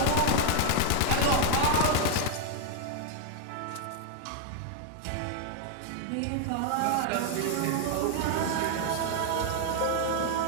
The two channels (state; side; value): different; both; correlation 0.00